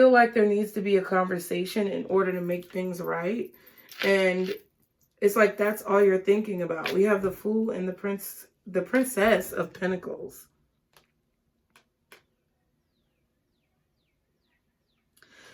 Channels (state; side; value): identical; both; correlation 1.00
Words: like there needs to be a conversation in order to make things right, and it's like that's all you're thinking about. We have the Fool and the Princess of Pentacles.